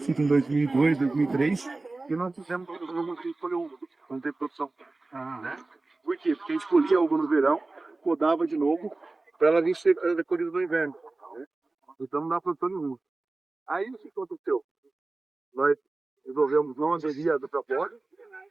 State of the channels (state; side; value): quieter; left; 3.3 dB